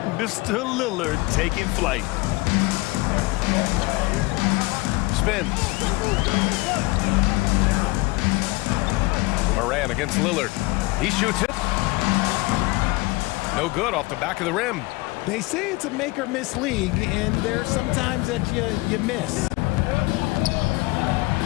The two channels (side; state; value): right; quieter; 22.7 dB